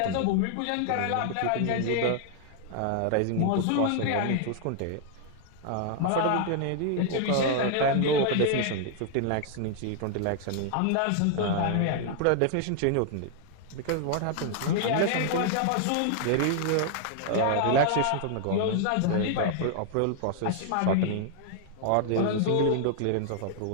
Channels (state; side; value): different; both; correlation 0.00